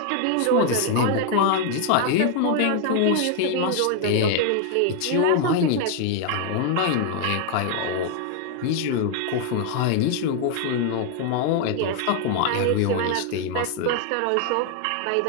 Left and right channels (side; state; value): both; different; correlation 0.00